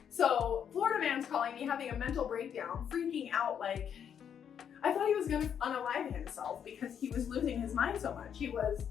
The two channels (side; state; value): right; quieter; 8.3 dB